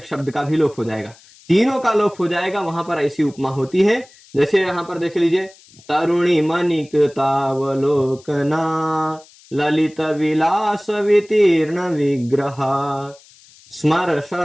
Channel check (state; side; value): noise; left; hiss, 26 dB below the sound